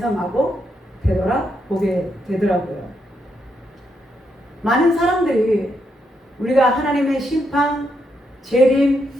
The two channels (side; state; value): both; normal; correlation 0.80